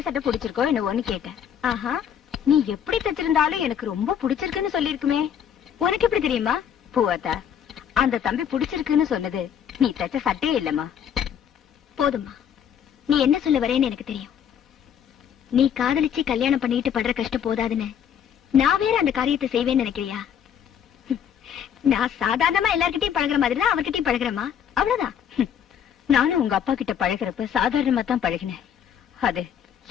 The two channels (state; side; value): quieter; right; 8.8 dB